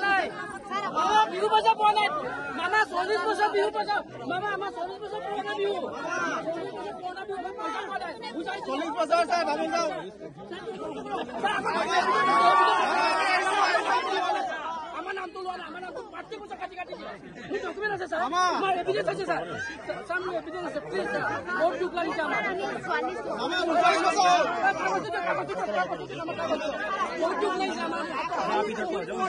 নাই বিহু পইচা পোৱা নাই মামা 40 বছৰ বিহু পইচা মামা আমাৰ 40 বছৰ পুৰণা বিহু 40 বছৰ চাই ভাবি যাওঁ আমাৰ নাম তো লোৱা আমাৰ নাম তো পাৰ্টি পয়সা কাটি কাটি মোৰ ডকুমেন্ট আছে স্যাৰ আমাৰ এভিডেন্স আছে স্যাৰ স্যাৰ মোৰ এভিডেন্স আছে প্লিজ স্যার বহুত দুখ লাগিছে আমার মামা 40 বছর বহুত দুখ লাগিছে আমার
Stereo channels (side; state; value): both; identical; correlation 1.00